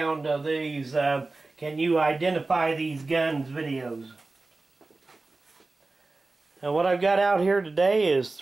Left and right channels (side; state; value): left; quieter; 3.4 dB